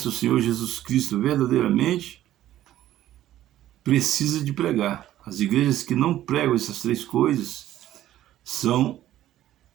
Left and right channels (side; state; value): left; quieter; 13.2 dB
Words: o Senhor Jesus Cristo verdadeiramente precisa de pregar. As igrejas que não pregam essas 3 coisas são